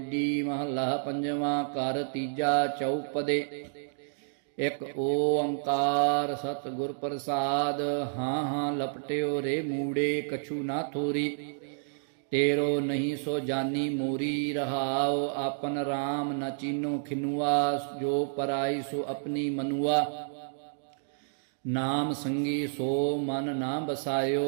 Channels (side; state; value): left; silent; digital silence